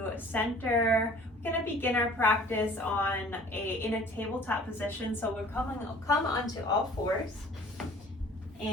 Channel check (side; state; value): both; normal; correlation 0.50